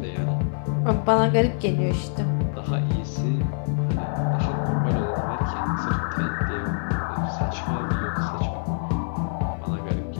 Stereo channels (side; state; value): right; silent; 58 dB below the other